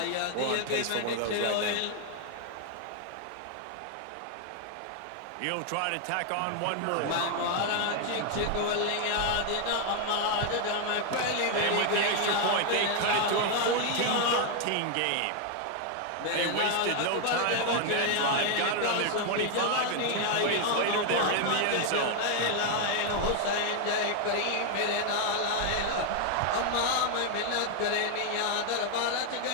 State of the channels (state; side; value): different; both; correlation 0.00